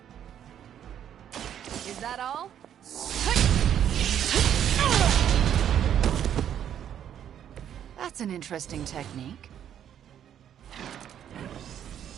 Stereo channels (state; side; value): quieter; left; 9.8 dB